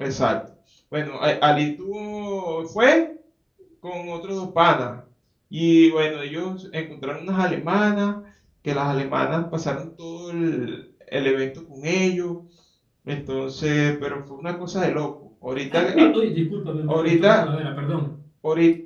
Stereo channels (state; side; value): identical; both; correlation 1.00